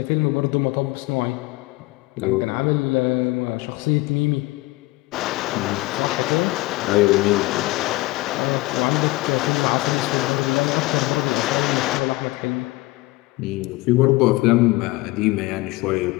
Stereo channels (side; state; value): right; quieter; 20.7 dB